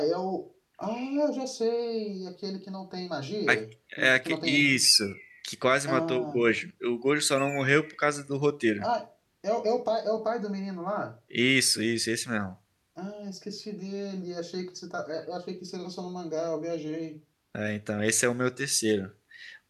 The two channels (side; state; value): both; identical; correlation 1.00